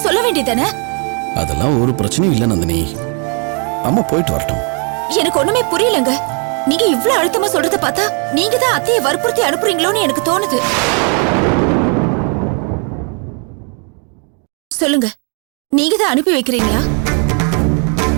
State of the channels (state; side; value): quieter; left; 38.6 dB